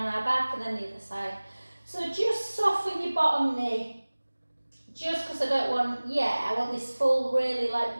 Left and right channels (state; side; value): inverted; both; correlation -1.00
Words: our back, and then the other side. So just soften your bottom knee, just because I want this full, really like